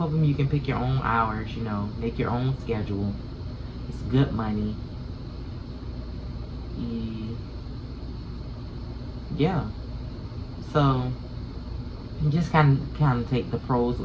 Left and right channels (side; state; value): both; identical; correlation 1.00